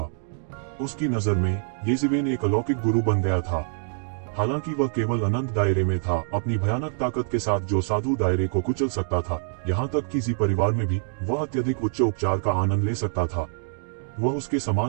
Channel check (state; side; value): silent; left; digital silence